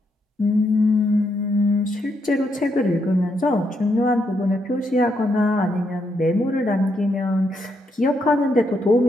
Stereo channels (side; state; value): both; normal; correlation 0.78